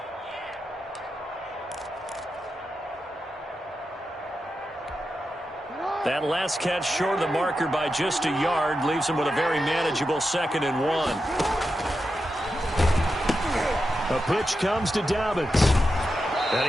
That last catch short of the marker by just a yard leaves him with a very manageable 2nd and 1. A pitch comes to Dobbins.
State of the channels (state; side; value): normal; both; correlation 0.89